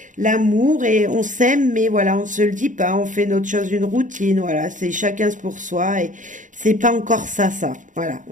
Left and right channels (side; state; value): left; late; 0.37 ms